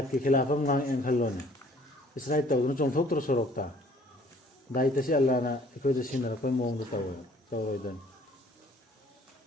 ꯈꯤꯂꯥꯐ ꯑꯃ ꯉꯥꯡꯑꯦꯅ ꯈꯜꯂꯣꯅꯦ ꯏꯁꯇ꯭ꯔꯥꯏꯛ ꯇꯧꯗꯨꯅ ꯆꯣꯡꯊꯣꯛꯇ꯭ꯔꯣ ꯁꯣꯔꯣꯛꯇ ꯗꯥꯏꯇꯁꯤ ꯑꯜꯂꯥꯍꯅ ꯑꯩꯈꯣꯏꯗ ꯁꯤꯟꯅꯔꯛꯄꯩ ꯃꯑꯣꯡꯗ ꯇꯧꯋꯦꯕ ꯇꯧꯔꯣꯏꯗꯅꯤ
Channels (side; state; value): both; normal; correlation 0.57